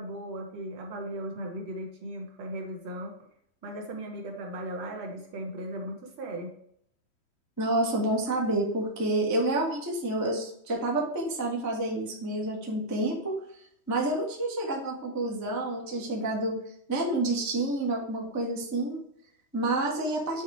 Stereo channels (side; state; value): right; late; 3.1 ms